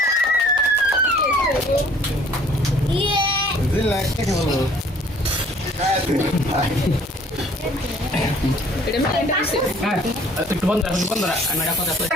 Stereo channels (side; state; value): both; normal; correlation 0.56